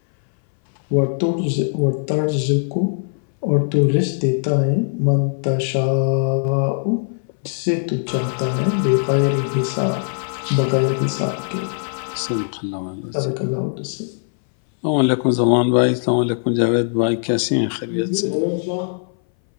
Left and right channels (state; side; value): silent; right; 61 dB below the other